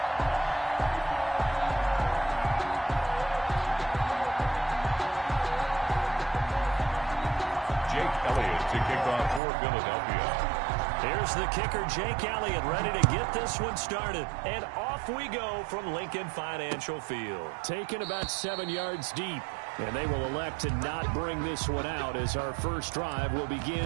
To kick off for Philadelphia. Here's the kicker, Jake Elliott, ready to get this one started. And off we go from Lincoln Financial Field. Taken about 7 yards deep. And they will elect to not bring this one out as our first drive will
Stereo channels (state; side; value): drops out; left; at 9.4 s